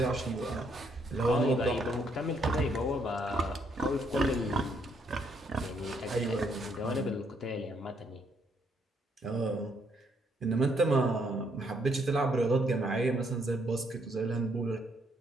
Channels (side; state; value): both; normal; correlation 0.72